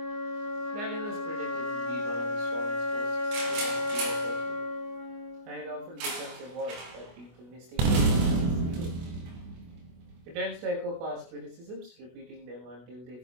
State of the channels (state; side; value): late; left; 24 ms